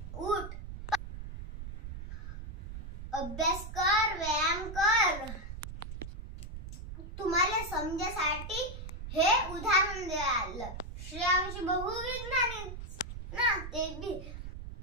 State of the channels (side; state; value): right; noise; rumble, 9 dB below the sound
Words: उठ, अभ्यास कर, व्यायाम